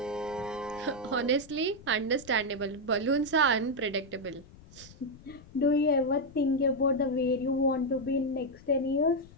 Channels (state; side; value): noise; left; rumble, 21 dB below the sound